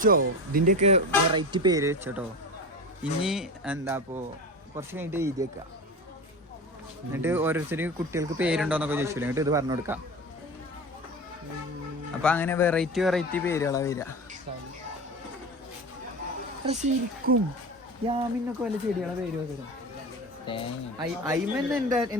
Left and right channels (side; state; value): both; normal; correlation 0.28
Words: ഇതിന്റെയൊക്കെ വെറൈറ്റി പേര് വെച്ചോട്ടോ. ഇനി എന്താപ്പോ കുറച്ച് കഴിഞ്ഞിട്ട് എഴുതി വെക്കാം. എന്നിട്ട് ഓരോരുത്തർക്ക് കുട്ടികൾക്ക് പേരുണ്ടോന്നൊക്കെ ചോദിച്ചില്ല. എന്നിട്ട് ഇത് പറഞ്ഞു കൊടുക്കാം. അപ്പൊ അങ്ങനെ വെറൈറ്റി പേരുകളാ വരിക. ശരിക്കും യാമിനൊക്കെ വല്ല ചെടികളെ പേര് വരും. ഐമൻ